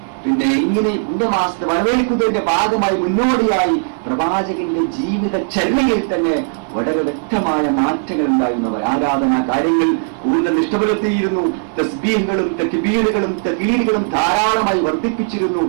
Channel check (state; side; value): silent; left; digital silence